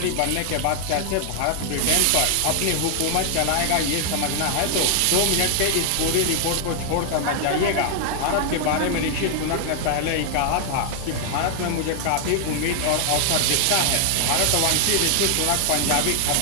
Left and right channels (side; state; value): both; different; correlation 0.00